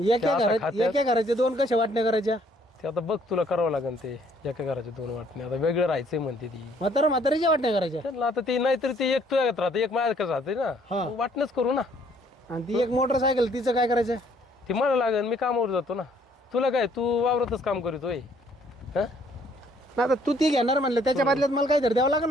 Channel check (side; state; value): both; normal; correlation 0.63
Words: त्या आता घरात खात्यात- एका घराच्या दोन कशा वाटण्या करायच्या? ते आता बघ तुला करावं लागेल. ते एका घराच्या 2 वाटण्या, आता वेगळं राहायचंय म्हणते ती. म्हातारीच्या वाटण्या करायच्या, त्यांना आता ते नाहीतरी ते एक तुझ्यात राहते, एक माझ्याकडे राहते ना. हा. मग वाटणंच करू ना. आणि ती एक मोटरसायकल तिचं काय करायचं? ती मला लागेल, मी कामावर जातो ना. तुला काय, तू वावरतच काम करीतोय. हा, ना आता तू ती घेणार म्हणलं, त्याच्या बदल्यात मला काहीतरी द्यावं लागेल